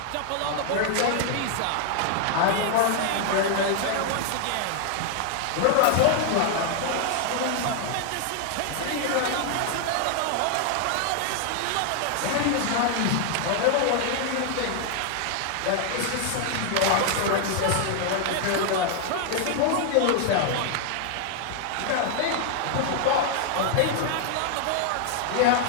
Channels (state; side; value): different; both; correlation 0.00